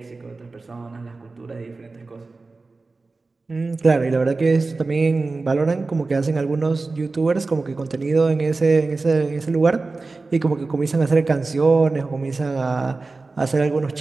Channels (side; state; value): left; quieter; 3.7 dB